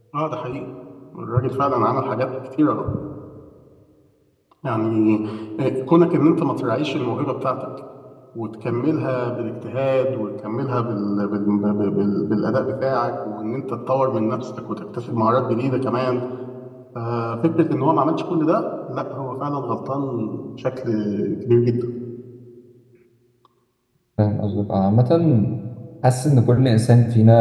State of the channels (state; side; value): identical; both; correlation 1.00